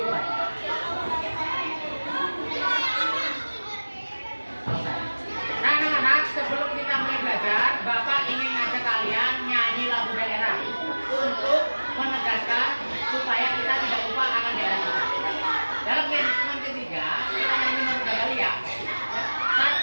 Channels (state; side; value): inverted; both; correlation -1.00